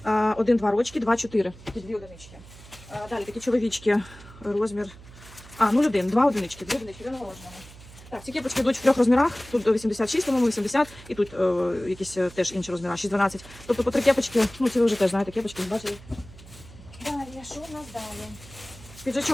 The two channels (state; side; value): noise; right; hum, 19 dB below the sound